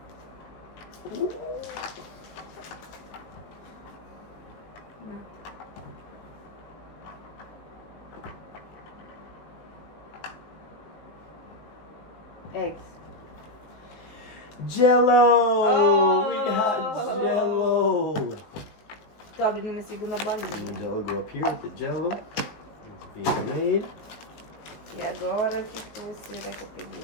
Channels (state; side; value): late; right; 19 ms